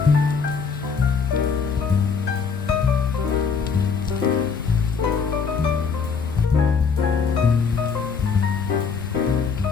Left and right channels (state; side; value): quieter; right; 5.6 dB